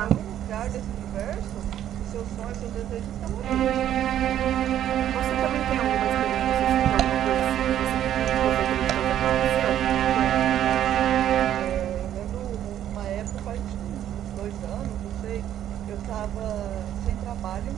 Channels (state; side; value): quieter; left; 11.1 dB